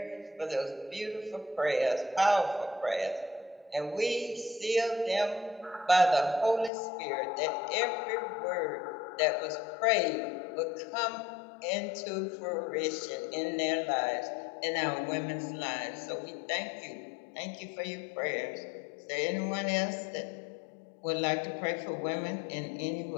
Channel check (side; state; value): right; drops out; at 6.7 s